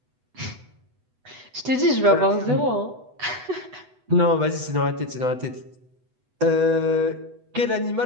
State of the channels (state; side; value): late; left; 8.1 ms